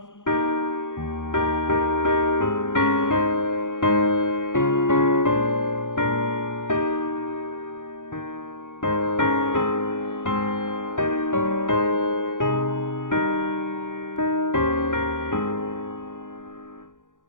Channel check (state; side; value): late; right; 0.87 ms